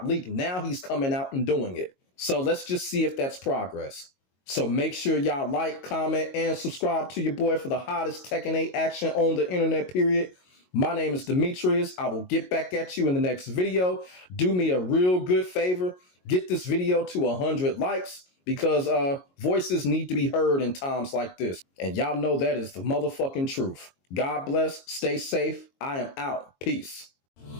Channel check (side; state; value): right; late; 22 ms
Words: leaked. Now he's coming out and doing it. So let's just see if that's progress. So make sure y'all like, comment, and subscribe to your boy for the hottest Tekken 8 action on the internet, period. My name is Demetrius. I will get back at you in the next video. Do me a real good favor. Get this video to 100 likes because voices need to be heard in times like this. And y'all know that is the motherfucking truth. God bless. Stay safe. I am out. Peace.